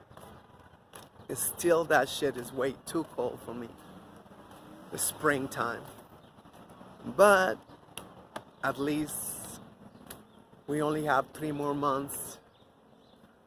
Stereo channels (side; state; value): both; identical; correlation 1.00